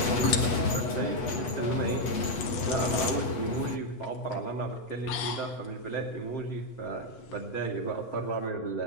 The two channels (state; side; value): late; right; 8.2 ms